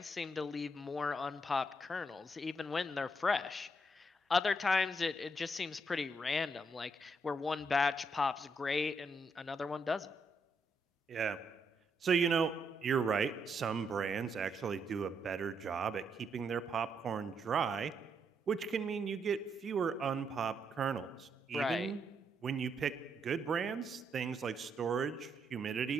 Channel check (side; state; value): both; normal; correlation 0.77